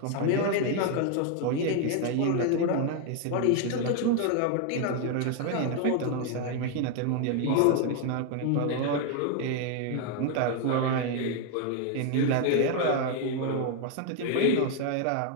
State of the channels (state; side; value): different; both; correlation 0.01